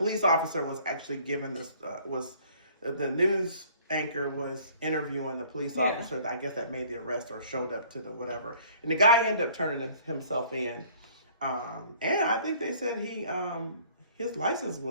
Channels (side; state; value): both; inverted; correlation -0.56